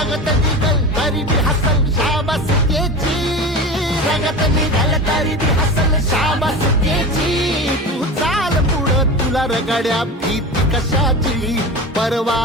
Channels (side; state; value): both; normal; correlation 0.28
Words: निघल तरी बी हसल शाबास त्याची, रगत निघल तरी बी हसल शाबास त्याची, तू चाल पुढं तुला रगड्या भीती कशाची,